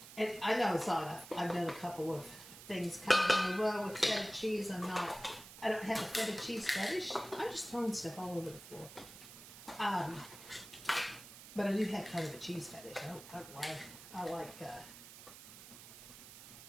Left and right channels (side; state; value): right; noise; hiss, 16 dB below the sound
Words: And I know it's not enough. I've done a couple of things kind of in a row with feta cheese. I don't have a feta cheese fetish. I'm just throwing stuff all over the floor. But I do have kind of a cheese fetish.